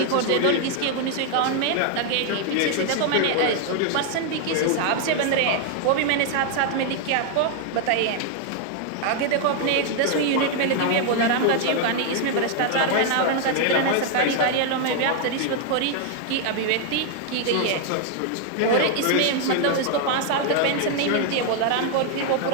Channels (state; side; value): different; both; correlation 0.00